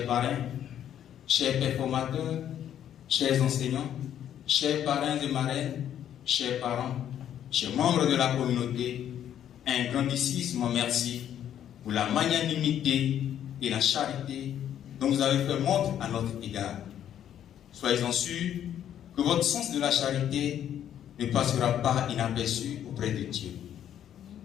parrains, chers performateurs, chers enseignants, chers parrains et marraines, chers parents, chers membres de la communauté, un grandissime merci pour la magnanimité et la charité dont vous avez fait montre à notre égard. Soyez-en sûrs que votre sens de la charité ne passera pas inaperçu auprès de Dieu.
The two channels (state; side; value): quieter; right; 10.3 dB